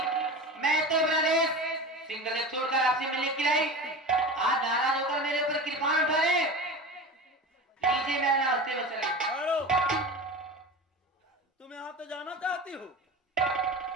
मैं तो प्रदेश सिंगल एक छोड़कर आपसे मिलने के लिए आई। आज नाराज होकर मेरे ऊपर कृपाण उठा रहे। लीजिए मेरा नाश्ते में चले। हेलो, तुम यहाँ तो जाना चाहती हो?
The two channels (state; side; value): normal; both; correlation 0.31